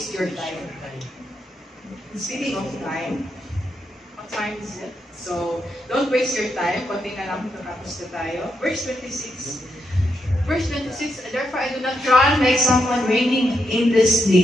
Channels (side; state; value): both; normal; correlation 0.81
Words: your time. Speaking of time, what time is it? So, don't waste your time. Konti na lang, tapos na tayo. Verse 26. Verse 26, therefore I do not try like someone reigning in this